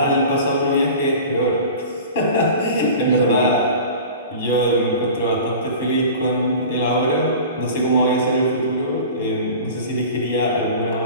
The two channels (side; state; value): both; inverted; correlation -0.38